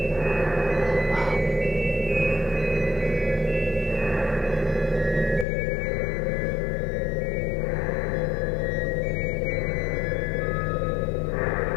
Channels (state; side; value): drops out; right; at 5.5 s